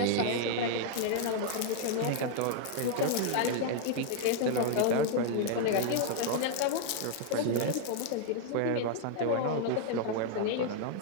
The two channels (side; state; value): both; different; correlation 0.00